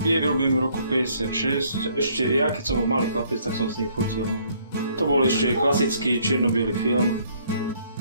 Je vyrobím v roku 56. Ešte ja, keď som malý chlapec, tak som s ním fotil. To bol ešte klasický čierno-biely film.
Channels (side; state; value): both; inverted; correlation -0.64